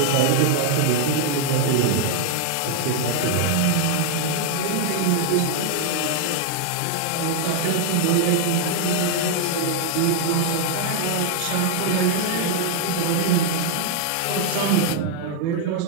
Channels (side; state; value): both; different; correlation 0.00